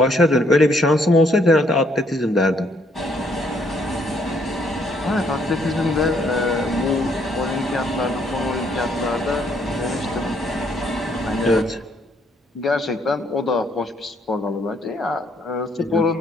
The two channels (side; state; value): both; normal; correlation 0.69